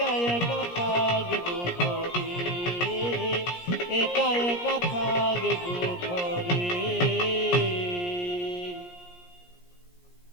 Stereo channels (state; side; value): late; right; 17 ms